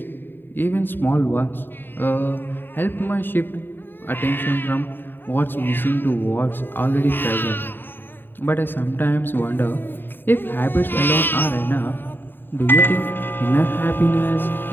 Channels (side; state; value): right; late; 0.096 ms